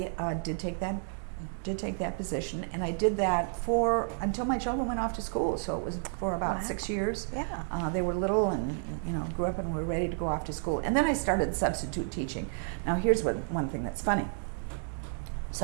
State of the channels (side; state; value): left; silent; 57 dB below the other